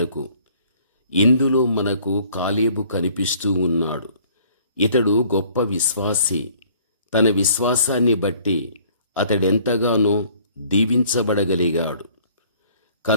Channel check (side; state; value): both; inverted; correlation -0.57